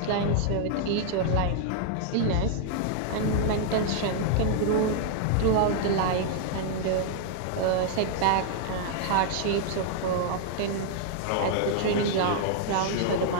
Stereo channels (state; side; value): different; both; correlation -0.01